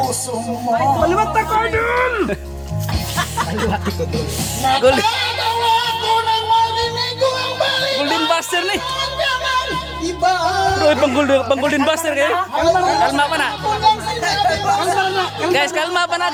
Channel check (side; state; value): both; identical; correlation 1.00